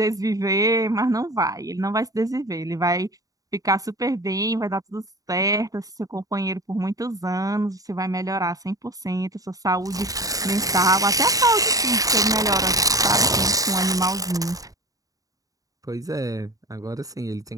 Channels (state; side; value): late; left; 0.17 ms